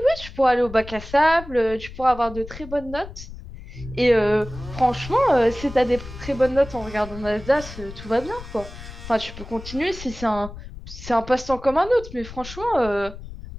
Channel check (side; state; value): left; noise; rumble, 13 dB below the sound